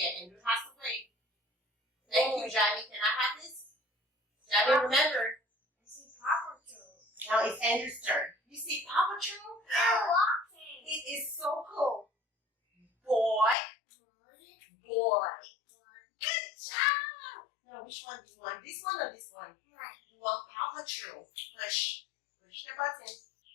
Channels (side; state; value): right; drops out; at 13.6 s